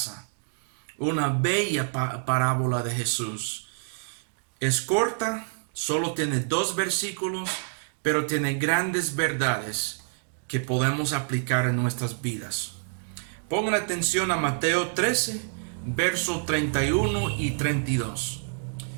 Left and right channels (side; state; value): left; silent; digital silence